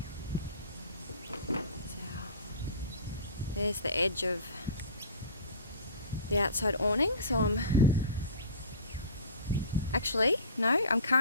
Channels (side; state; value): both; inverted; correlation -0.38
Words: There's the edge of the outside awning, so I'm